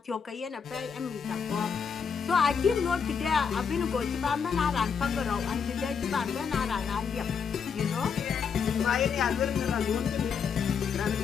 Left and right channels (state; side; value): quieter; right; 6.4 dB